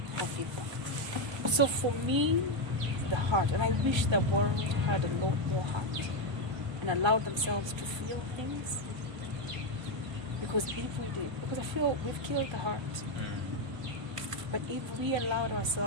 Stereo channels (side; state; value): left; late; 1.2 ms